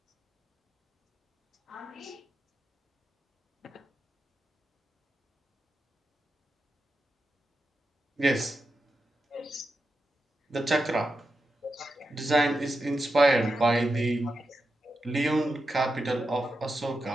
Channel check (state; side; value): normal; both; correlation 0.88